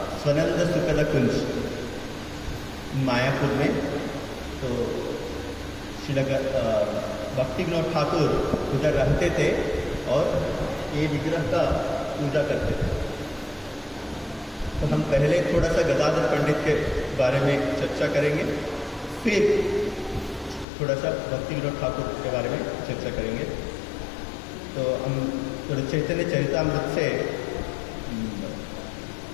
स्वनंद सुखद कुंज मायापुर में। तो श्रील भक्ति विनोद ठाकुर उधर रहते थे और ये विग्रह का पूजा करते थे। तो हम पहले थोड़ा सा गदाधर पंडित के बारे में चर्चा करेंगे, फिर थोड़ा सा भक्ति विनोद ठाकुर के बारे में चर्चा करेंगे। तो हम थोड़ा चैतन्य चरितामृत से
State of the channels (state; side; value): drops out; right; at 20.7 s